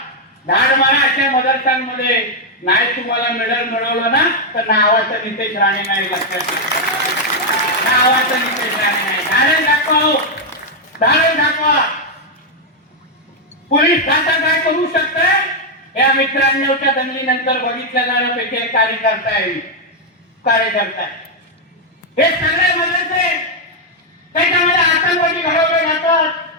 धाड मारा. अशा मदरशांमध्ये नाही तुम्हाला मेडल मिळवलं ना तर नावाचं नितेश राणे नाही, लक्षात नावाचं नितेश राणे नाही. धाडे दाखवा, धाडे दाखवा. पोलीस खातं काय करू शकत या मित्रांच्या दंगलीनंतर बघितल्या जाण्यापैकी एक कार्यकर्ता आहे. हे सगळे मदरसे त्याच्यामध्ये आतंकवादी घडवले जातात.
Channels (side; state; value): both; normal; correlation 0.00